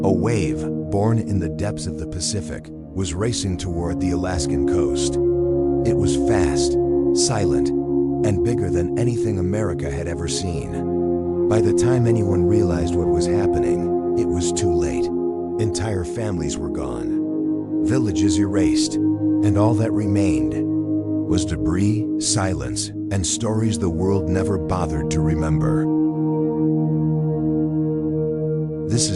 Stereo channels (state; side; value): identical; both; correlation 1.00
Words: A wave, born in the depths of the Pacific, was racing toward the Alaskan coast. It was fast, silent, and bigger than anything America had ever seen. By the time anyone realized what was happening, it was too late. Entire families were gone, villages erased, and all that remained was debris, silence, and stories the world never bothered to remember. This